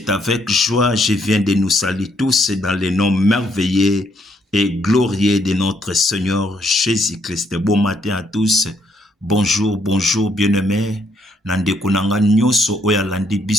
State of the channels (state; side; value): normal; both; correlation 0.71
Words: avec joie, je viens de nous saluer tous dans le nom merveilleux et glorieux de notre Seigneur Jésus-Christ. Bon matin à tous, bonjour, bonjour bien-aimé. Nandeko nanga nyoso oya landi